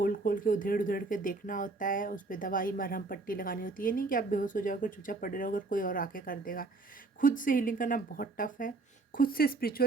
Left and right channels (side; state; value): left; quieter; 3.6 dB